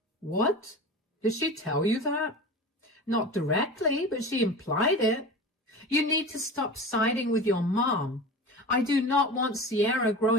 What? Did she tell you that? Not directly, but she implied it. You need to stop siding with your mom. I do not want Sierra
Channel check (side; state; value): both; normal; correlation 0.32